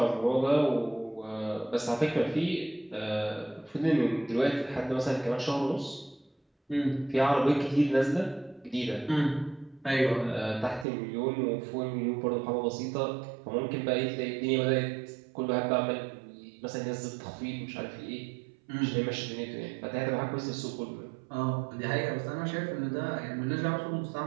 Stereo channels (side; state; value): left; drops out; at 10.9 s